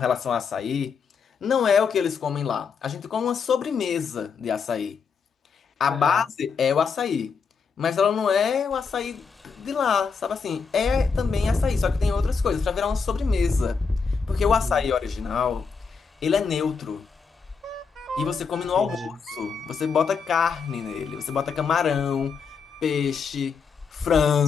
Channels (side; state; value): right; quieter; 5.6 dB